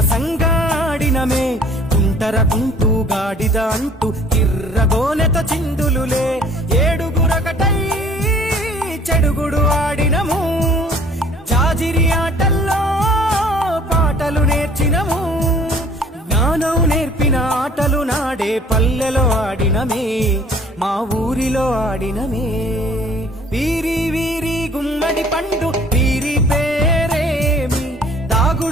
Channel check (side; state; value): both; normal; correlation 0.54